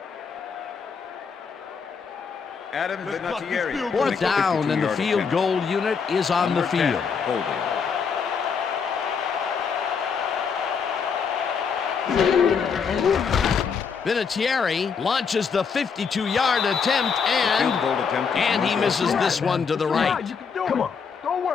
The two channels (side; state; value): right; quieter; 6.0 dB